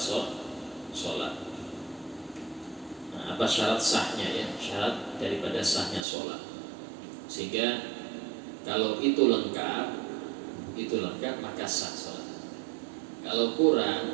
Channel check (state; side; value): drops out; left; at 6.1 s